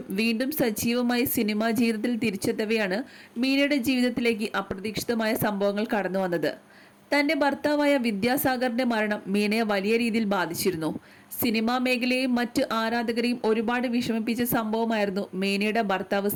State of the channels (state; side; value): identical; both; correlation 1.00